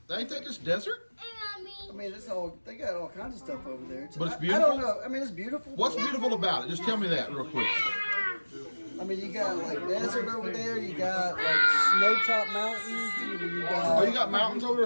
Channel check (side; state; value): both; inverted; correlation -1.00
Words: Ain't that just desert? I mean, they got all kinds of stuff over there. But it's I beautiful? don't know. I mean, it's beautiful. What's beautiful about it? Just tell me that real quick. I mean, you got like desert over there. You got like snow-top mountains. You got. Oh, you got mountains over